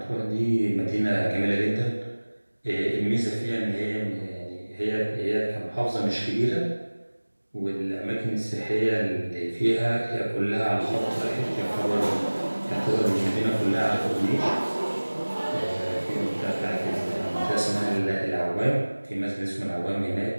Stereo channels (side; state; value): both; inverted; correlation -1.00